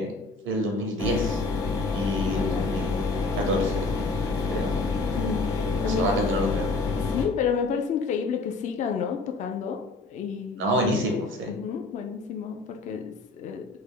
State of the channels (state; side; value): quieter; right; 3.1 dB